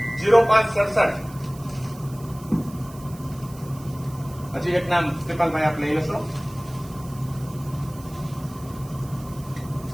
હજી એક નામ કૃપાલભાઈ આપ લઈ લેશો.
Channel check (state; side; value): noise; right; hiss, 21 dB below the sound